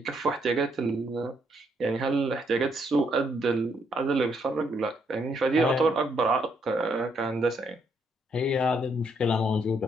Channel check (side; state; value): both; normal; correlation 0.73